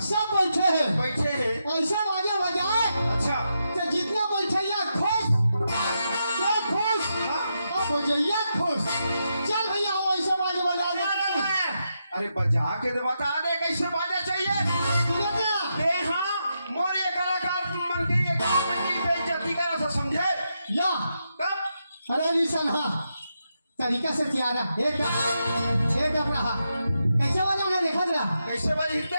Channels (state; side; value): inverted; both; correlation -0.84